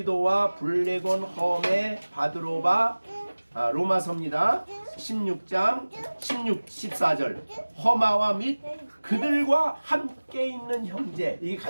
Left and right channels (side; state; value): both; inverted; correlation -1.00